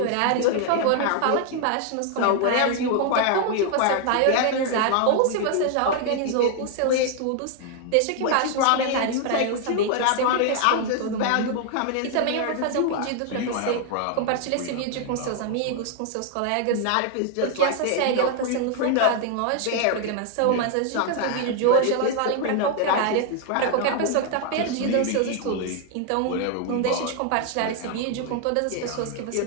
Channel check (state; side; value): different; both; correlation 0.00